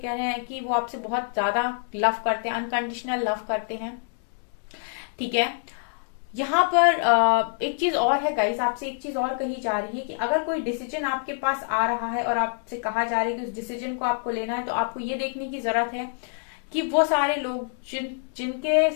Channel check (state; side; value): silent; right; digital silence